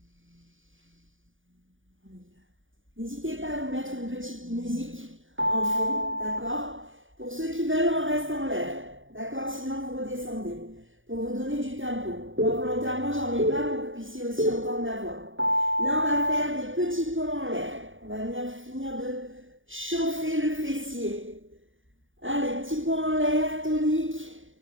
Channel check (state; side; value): late; left; 0.57 ms